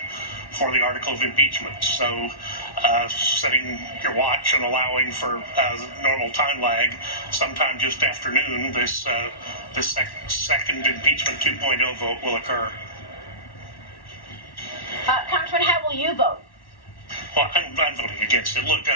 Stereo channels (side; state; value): right; late; 1.1 ms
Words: for the article of impeachment. So setting your watch and allowing for normal time lag, sometime just afternoon, this second impeachment 2.0 vote will occur. Congressman, how will you vote? Well, I'm voting against it. Look,